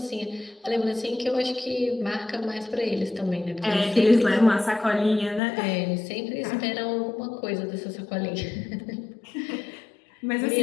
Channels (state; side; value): drops out; right; at 5.4 s